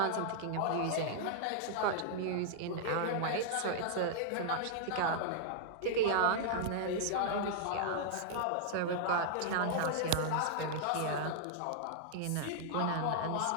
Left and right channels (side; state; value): both; different; correlation -0.01